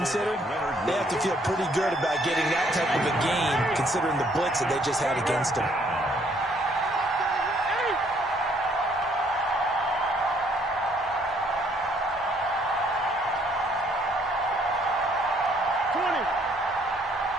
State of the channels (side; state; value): both; normal; correlation 0.65